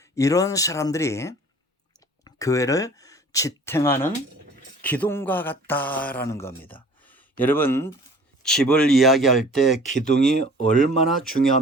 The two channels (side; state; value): both; normal; correlation 0.48